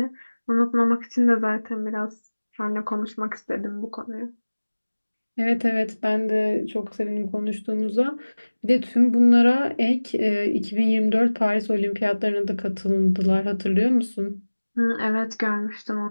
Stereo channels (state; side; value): inverted; both; correlation -1.00